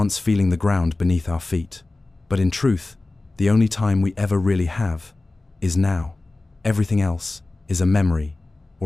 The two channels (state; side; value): quieter; right; 3.1 dB